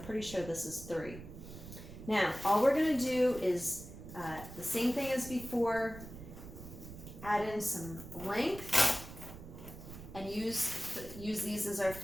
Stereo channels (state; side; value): noise; right; rumble, 13 dB below the sound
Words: sure this is 3. Now, all we're gonna do is the same thing as before, add in some length, and use these as our